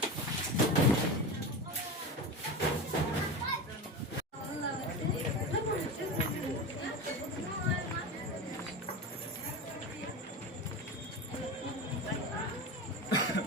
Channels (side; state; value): both; normal; correlation 0.24